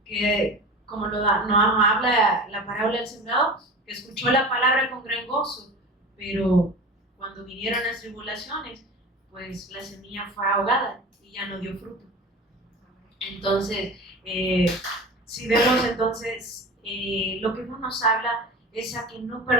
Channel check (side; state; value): both; normal; correlation 0.34